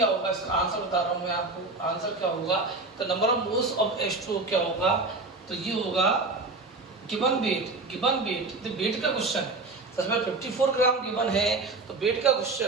होगा, इसका आंसर बता रहा हूं मैं आपको। आंसर क्या होगा, तो number of moles of H2O क्या होगा, तो ये होगा गिवन वेट। तो वेट का क्वेश्चन है, सबसे पहले 54 ग्राम गिवन है तो वेट का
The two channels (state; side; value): quieter; left; 3.4 dB